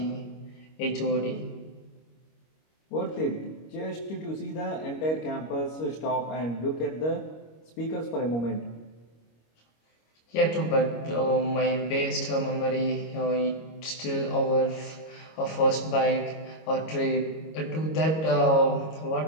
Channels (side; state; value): right; late; 25 ms